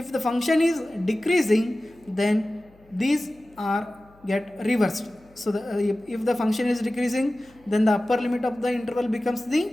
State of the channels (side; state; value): left; noise; hum, 29 dB below the sound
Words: the function is decreasing, then these are get reversed. So if the function is decreasing, then the upper limit of the interval becomes